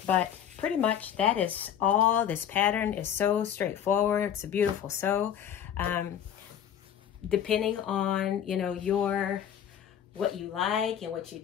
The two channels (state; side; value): quieter; right; 9.5 dB